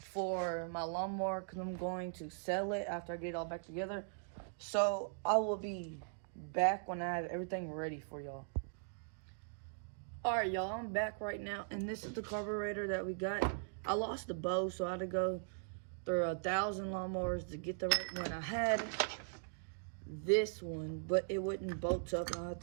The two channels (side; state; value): left; silent; digital silence